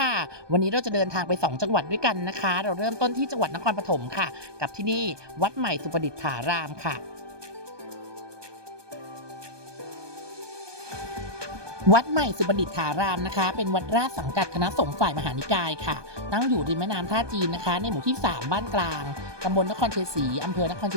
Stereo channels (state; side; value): late; left; 1.2 ms